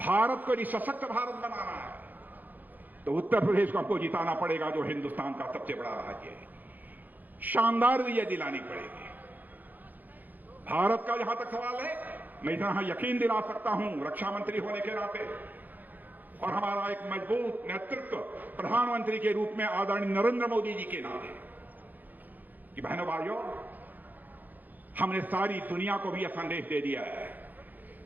को यदि सशक्त भारत बनाना है तो उत्तर प्रदेश को हमको जिताना पड़ेगा, जो हिंदुस्तान का सबसे बड़ा राज्य है। शानदार विजय दिलानी पड़ेगी। भारत का जहां तक सवाल है, मैं इतना यकीन दिला सकता हूं रक्षा मंत्री होने के नाते और हमारा एक मजबूत नेतृत्व प्रधानमंत्री के रूप में आदरणीय नरेंद्र मोदी जी के नाते, कि बहनों भाइयों, हमने सारी दुनिया को भी यह संदेश दे दिया है,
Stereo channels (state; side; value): late; left; 0.084 ms